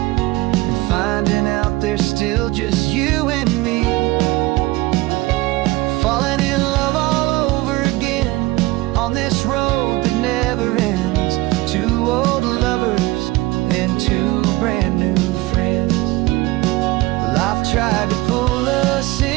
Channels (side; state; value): left; quieter; 20.1 dB